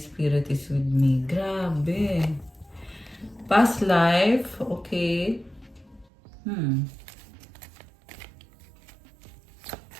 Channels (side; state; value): left; drops out; at 6.1 s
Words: Spirit is with me. Grabe. Past life, okay.